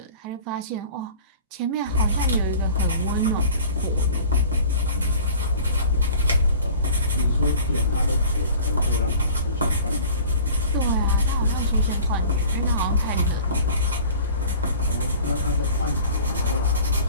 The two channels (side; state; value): both; inverted; correlation -0.44